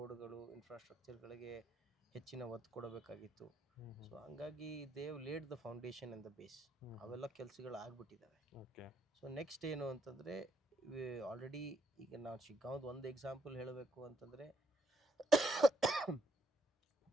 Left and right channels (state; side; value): normal; both; correlation 0.74